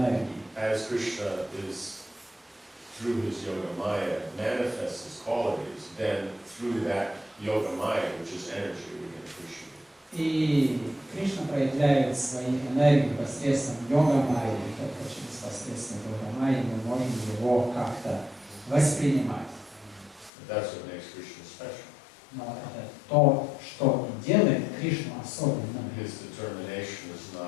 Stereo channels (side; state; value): right; drops out; at 20.3 s